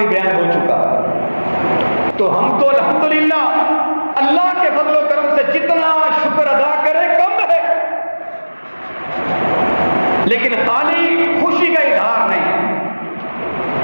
بیان ہو چکا۔ تو ہم تو الحمدللہ اللہ کے فضل و کرم سے جتنا شکر ادا کریں کم ہے، لیکن خالی خوشی کا اظہار نہیں،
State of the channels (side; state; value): both; inverted; correlation -1.00